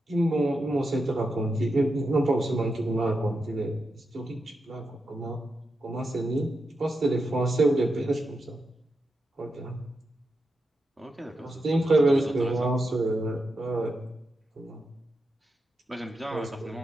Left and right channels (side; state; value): both; normal; correlation 0.87